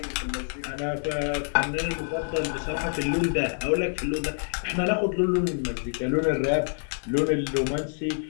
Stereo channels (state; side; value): silent; right; digital silence